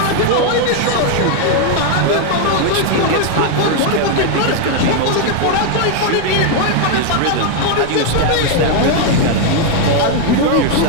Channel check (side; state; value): both; different; correlation 0.01